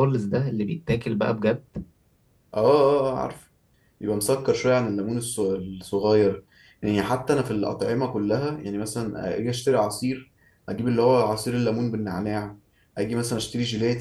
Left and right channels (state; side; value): identical; both; correlation 1.00